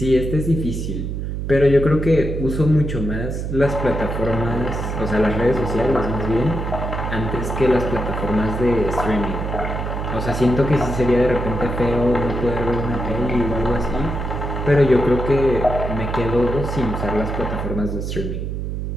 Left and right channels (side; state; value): right; noise; hum, 3 dB below the sound